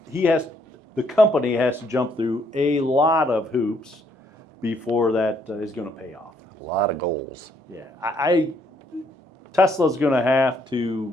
the company has to jump through a lot of hoops before that is going to pay off. A lot of goals. Yeah, Tesla's going to have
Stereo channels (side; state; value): both; normal; correlation 0.69